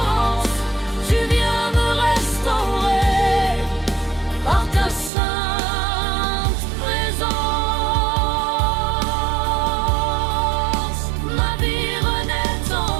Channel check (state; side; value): drops out; left; at 5.1 s